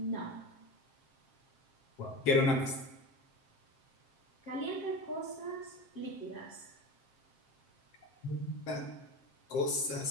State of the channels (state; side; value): late; right; 7.5 ms